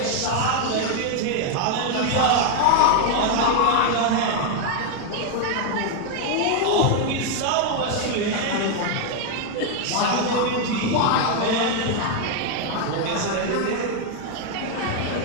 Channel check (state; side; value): different; both; correlation 0.00